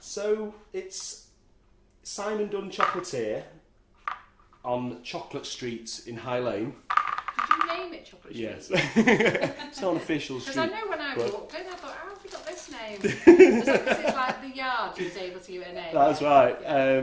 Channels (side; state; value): both; identical; correlation 1.00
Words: it's Simon Dunn Chocolatier on Chocolate Street in High Lane. Did you name it Chocolate Street? Yes. It's not an official Because street. I know when I but- walked in, I thought, how have you got this name? Is that because it's like the yard you was able to give it a name? That's right.